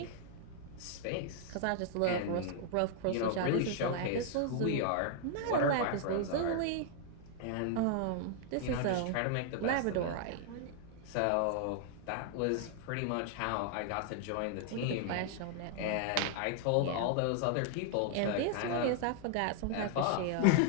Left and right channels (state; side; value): different; both; correlation 0.00